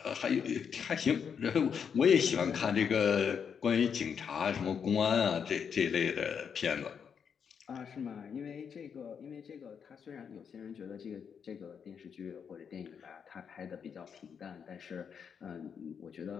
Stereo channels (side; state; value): right; quieter; 7.0 dB